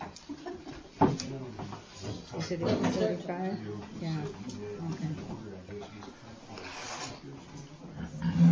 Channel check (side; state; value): both; identical; correlation 1.00